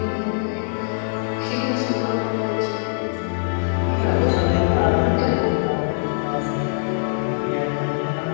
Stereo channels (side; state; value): right; silent; digital silence